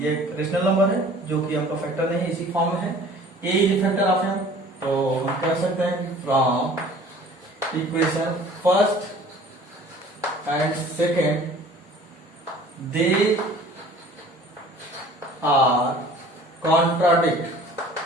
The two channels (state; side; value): normal; both; correlation 0.49